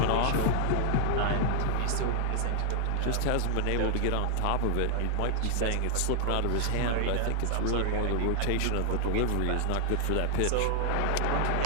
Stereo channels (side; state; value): both; different; correlation 0.00